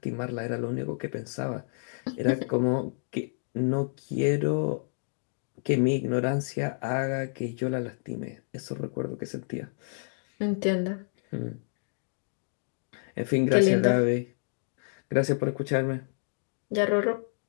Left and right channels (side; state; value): right; silent; digital silence